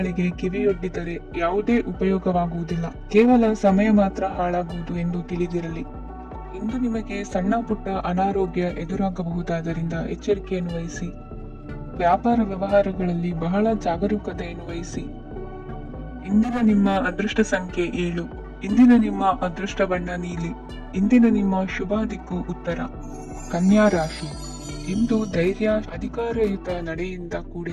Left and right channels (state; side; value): identical; both; correlation 1.00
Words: ಕಿವಿಯೊಡ್ಡಿದರೆ ಯಾವುದೇ ಉಪಯೋಗವಾಗುವುದಿಲ್ಲ, ಕೇವಲ ಸಮಯ ಮಾತ್ರ ಹಾಳಾಗುವುದು ಎಂದು ತಿಳಿದಿರಲಿ. ಇಂದು ನಿಮಗೆ ಸಣ್ಣ ಪುಟ್ಟ ಅನಾರೋಗ್ಯ ಎದುರಾಗಬಹುದಾದ್ದರಿಂದ ಎಚ್ಚರಿಕೆಯನ್ನು ವಹಿಸಿ. ವ್ಯಾಪಾರ ವ್ಯವಹಾರಗಳಲ್ಲಿ ಬಹಳ ಜಾಗರೂಕತೆಯನ್ನು ವಹಿಸಿ. ಇಂದಿನ ನಿಮ್ಮ ಅದೃಷ್ಟ ಸಂಖ್ಯೆ 7. ಇಂದಿನ ನಿಮ್ಮ ಅದೃಷ್ಟ ಬಣ್ಣ ನೀಲಿ. ಇಂದಿನ ನಿಮ್ಮ ಶುಭ ದಿಕ್ಕು ಉತ್ತರ. ಕನ್ಯಾ ರಾಶಿ. ಇಂದು ಧೈರ್ಯ, ಅಧಿಕಾರಯುತ ನಡೆಯಿಂದ